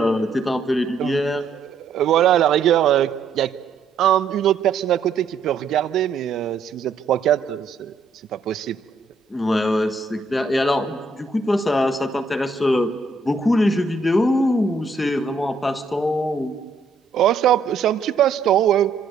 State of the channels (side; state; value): left; quieter; 4.2 dB